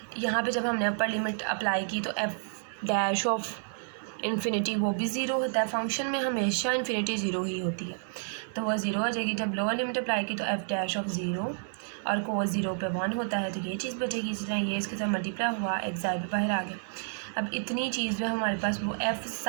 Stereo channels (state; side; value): silent; left; digital silence